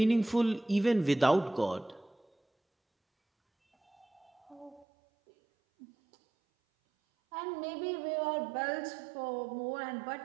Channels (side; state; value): left; drops out; at 4.9 s